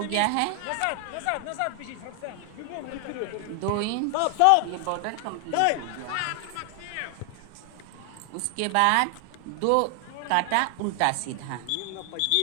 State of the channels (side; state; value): both; different; correlation 0.00